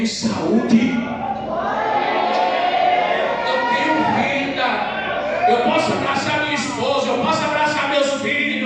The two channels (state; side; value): identical; both; correlation 1.00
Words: saúde, eu tenho vida, eu posso abraçar minha esposa, eu posso abraçar meus